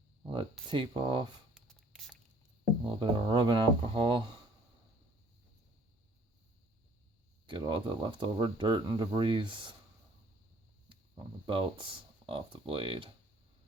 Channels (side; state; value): both; normal; correlation 0.57